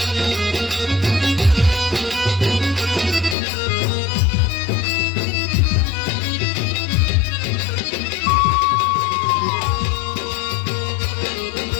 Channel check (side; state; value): right; drops out; at 3.4 s